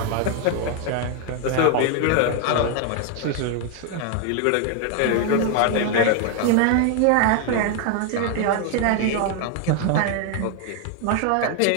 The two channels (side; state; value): both; different; correlation 0.00